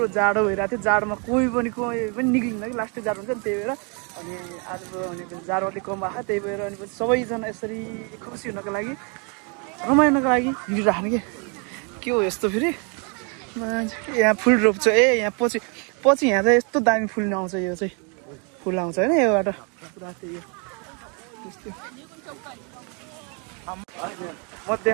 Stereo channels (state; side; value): quieter; left; 35.5 dB